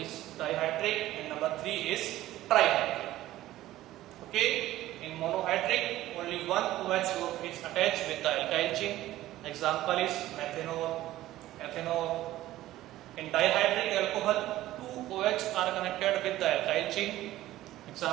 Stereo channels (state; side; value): quieter; left; 15.2 dB